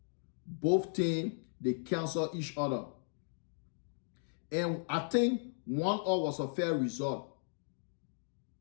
Both teams, they canceled each other. And I think 1-1 was a fair result.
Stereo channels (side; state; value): right; silent; digital silence